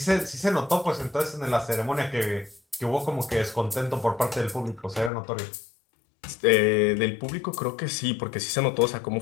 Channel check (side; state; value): right; drops out; at 5.1 s